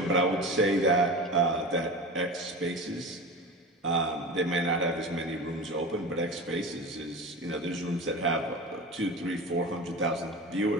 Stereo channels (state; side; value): normal; both; correlation 0.31